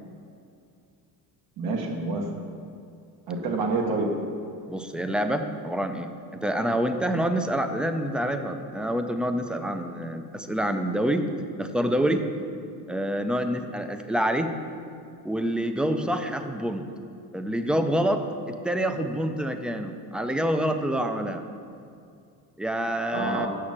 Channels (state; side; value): normal; both; correlation 0.69